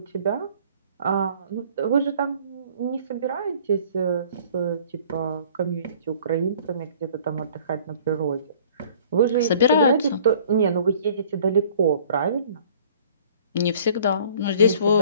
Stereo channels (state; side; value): inverted; both; correlation -0.53